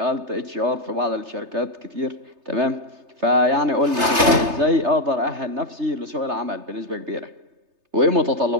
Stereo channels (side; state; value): left; late; 3.3 ms